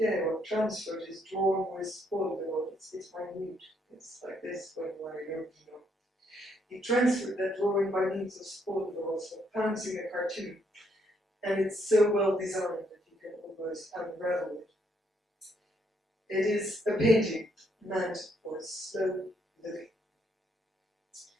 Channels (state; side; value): normal; both; correlation 0.73